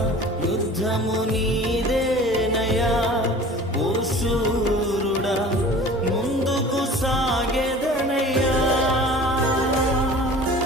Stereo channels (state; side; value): normal; both; correlation 0.43